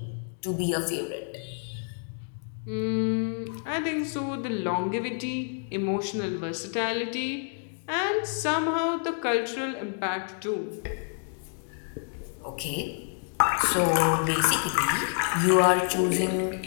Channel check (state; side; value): silent; right; 59 dB below the other